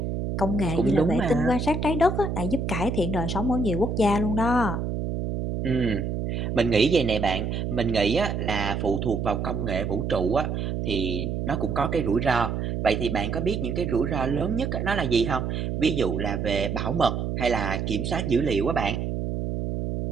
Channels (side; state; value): right; noise; hum, 2 dB below the sound